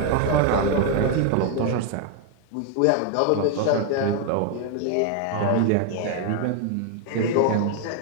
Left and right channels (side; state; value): both; different; correlation 0.00